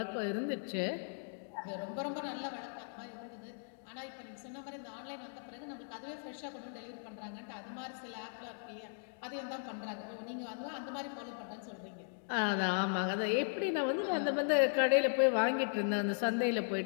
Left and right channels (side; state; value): right; silent; digital silence